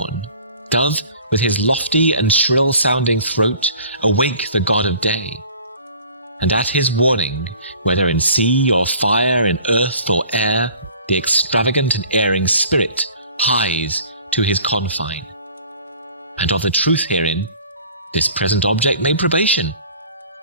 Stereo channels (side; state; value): both; inverted; correlation -0.49